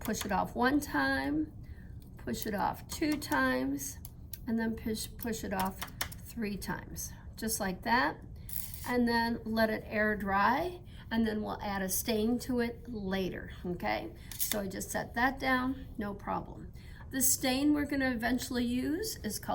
it off 1 time, push it off 2 times, and then push it off 3 times, just like that. And then let it air dry, and then we'll add a stain to it later, okay? So I just set that down, no problem. The stain we're gonna eventually use is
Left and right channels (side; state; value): both; identical; correlation 1.00